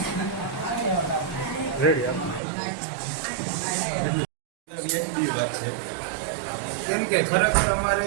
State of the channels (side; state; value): left; drops out; at 2.4 s